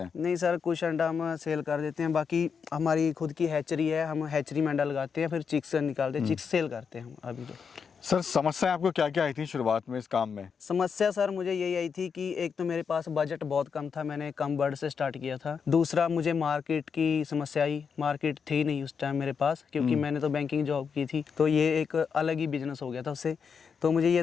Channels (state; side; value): quieter; right; 6.2 dB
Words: हैं? नहीं सर, कुछ अंडा हम सेल कर देते हैं, बाकी हमारी खुद की हैचरी है, हम हैचरी में अंडा लगाते हैं, फिर चिक्स निकालते हैं, चिक्स सेल करते हैं हम अभी तो। सर समस्या आपको क्या क्या आई थी शुरुआत में इस काम में? समस्या सर मुझे यही आई थी कि एक तो मेरे पास बजट बहुत कम था, मैंने कम बर्ड से स्टार्ट किया था। दूसरा मुझे मार्केट की समस्या आई, मार्केट थी नहीं उस टाइम मेरे पास, क्योंकि मैंने तो बैंकिंग जॉब की थी, तो ये एक अलग ही बिजनेस हो गया था उससे। तो मुझे ये